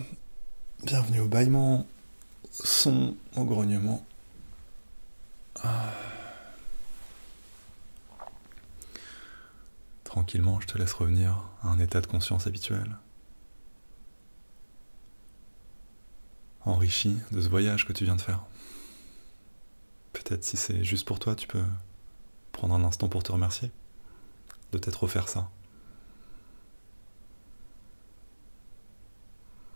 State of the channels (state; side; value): inverted; both; correlation -1.00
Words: Bienvenue au bâillement, son, au grognement. Tranquillement, je te laisse revenir à un état de conscience habituel. Enrichi de ce voyage que tu viens de faire. Peut-être si c'est juste pour toi, tu peux prendre un instant pour te remercier de t'être offert ça.